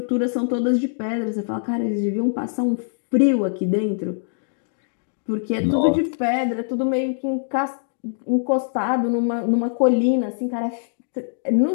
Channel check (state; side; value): silent; right; digital silence